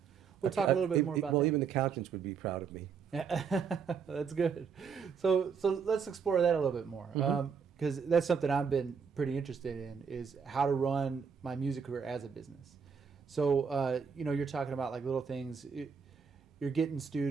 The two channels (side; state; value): left; quieter; 6.3 dB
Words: We'll talk a little bit more about that. Well, even accountants would be proud of me. That's good. So let's explore that a little bit more, because that's something I've been pretty interested in, is how to run my music career as a business. So you're talking about like little things. You're getting